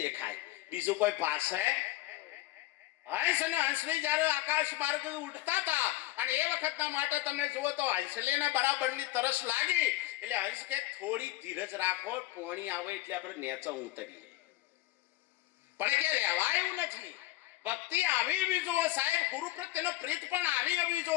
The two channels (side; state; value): right; quieter; 17.0 dB